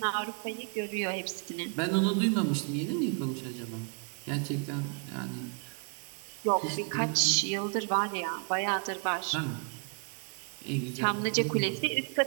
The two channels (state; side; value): quieter; left; 39.6 dB